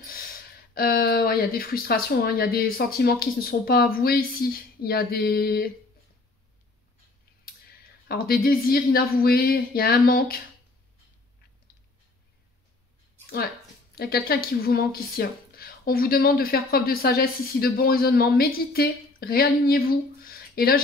Ouais, il y a des frustrations, hein. Il y a des sentiments qui ne sont pas avoués ici. Il y a des désirs inavoués. Il y a un manque. Ouais, il y a quelqu'un qui vous manque ici. Hein. On vous demande de faire preuve de sagesse ici, de bon raisonnement. Méditez, réalignez-vous. Et là,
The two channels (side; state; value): right; quieter; 3.2 dB